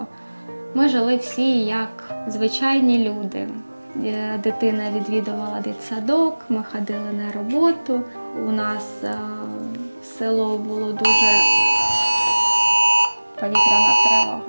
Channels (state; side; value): inverted; both; correlation -1.00